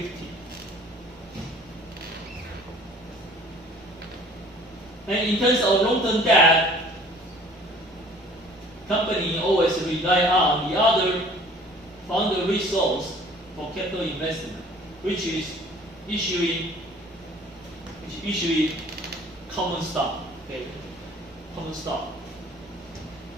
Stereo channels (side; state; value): both; normal; correlation 0.51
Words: And in terms of long-term debt, company always rely on the other fund resource for capital investment, which is issuing common stock. Okay, common stock.